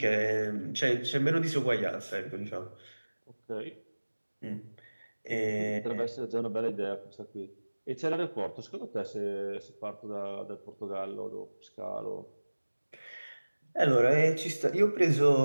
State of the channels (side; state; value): both; inverted; correlation -1.00